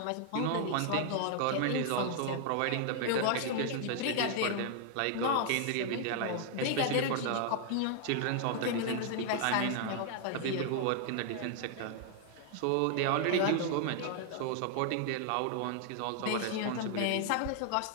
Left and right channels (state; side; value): different; both; correlation 0.00